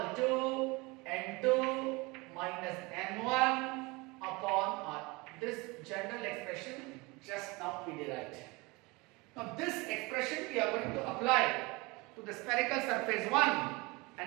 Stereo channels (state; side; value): quieter; left; 25.0 dB